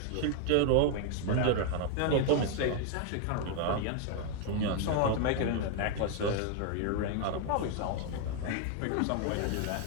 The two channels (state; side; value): different; both; correlation 0.00